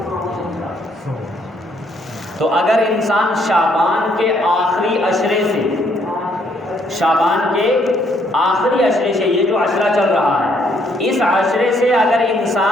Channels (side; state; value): both; normal; correlation 0.69